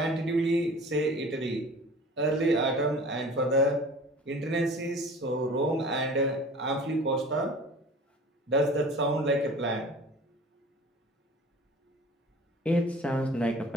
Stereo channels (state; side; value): normal; both; correlation 0.43